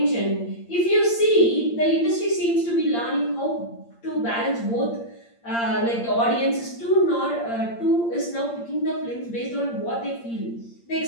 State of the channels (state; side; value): late; right; 8.7 ms